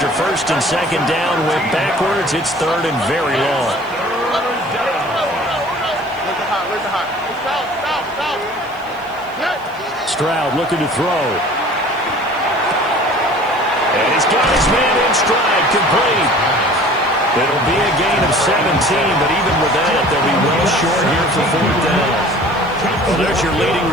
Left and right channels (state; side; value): noise; right; hiss, 27 dB below the sound